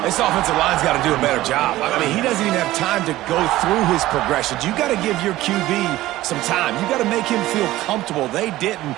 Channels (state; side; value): quieter; left; 16.2 dB